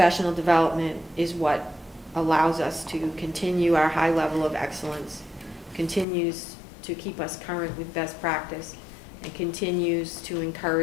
development is what allows us to continue our high level of excellence, continues to keep us current with best practice, and continues to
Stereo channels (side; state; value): right; drops out; at 6.1 s